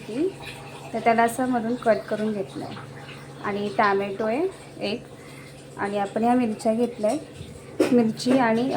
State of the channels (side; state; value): both; identical; correlation 1.00